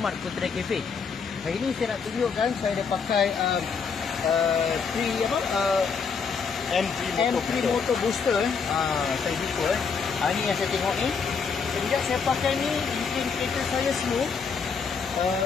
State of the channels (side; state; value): right; quieter; 5.7 dB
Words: Putra Cafe. Hari ini saya nak tunjukkan saya dah pakai M3 Motor Booster. Saya buka. Ini yang saya tengok ni. Sejak saya pakai ni, bikin kereta saya smooth,